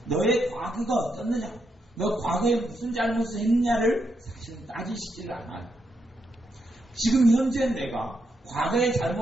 너의 과거가 어떻느냐, 너 과거에 무슨 잘못을 했느냐를 사실은 따지시지를 않아요. 지금 현재 내가 과거의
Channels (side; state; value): both; normal; correlation 0.81